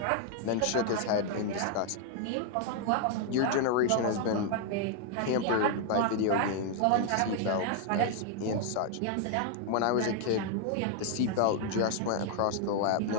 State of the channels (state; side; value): different; both; correlation 0.00